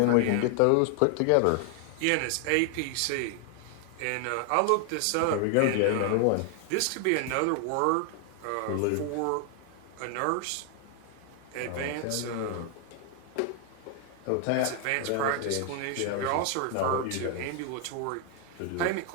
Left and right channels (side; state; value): both; different; correlation 0.00